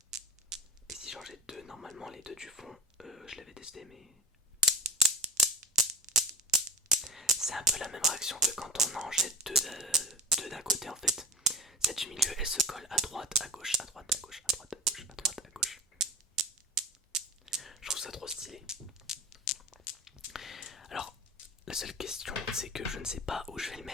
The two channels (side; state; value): both; normal; correlation 0.33